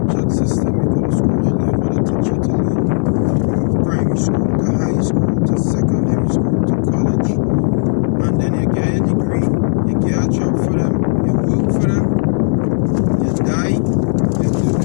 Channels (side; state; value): right; silent; 57 dB below the other